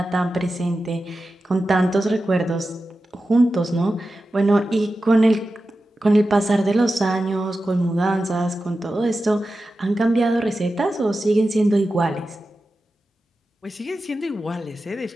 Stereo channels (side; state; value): both; normal; correlation 0.93